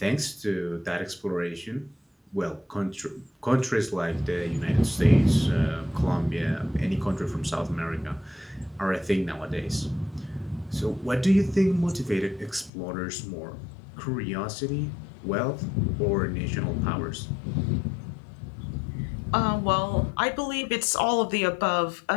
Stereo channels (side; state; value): right; drops out; at 12.7 s